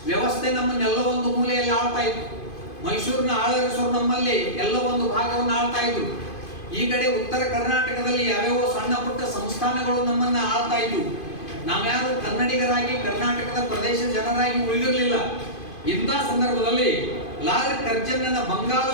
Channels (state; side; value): late; right; 2.5 ms